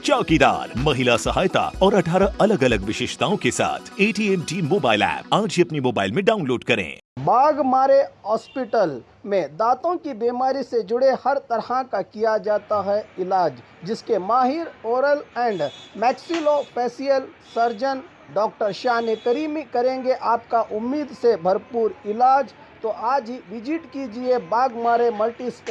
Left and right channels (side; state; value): both; identical; correlation 1.00